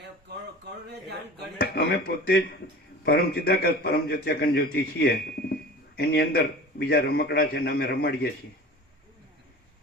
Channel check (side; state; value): both; normal; correlation 0.38